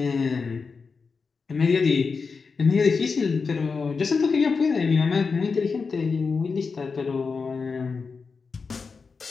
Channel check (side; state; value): right; quieter; 4.9 dB